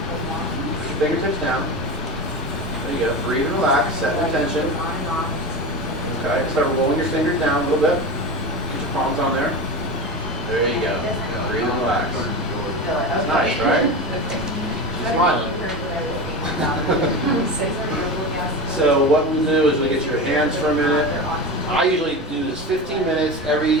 Fingertips down. There you go. Breathe and relax. Set the tension. Okay. Start rolling your fingers down a little bit. Get your palms on there. There you go. Breathe and relax. That's nice, right? Smiling. So what we'll do is we'll get your hands for a minute. I usually do this 15 minutes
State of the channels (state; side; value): normal; both; correlation 0.25